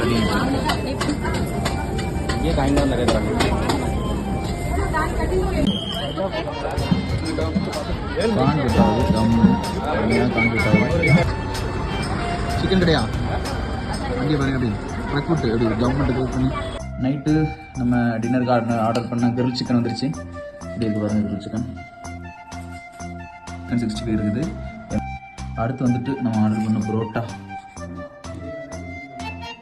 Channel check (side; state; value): both; identical; correlation 1.00